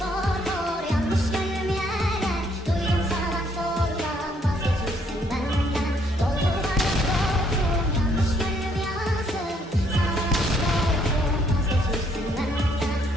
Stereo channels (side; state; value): both; normal; correlation 0.68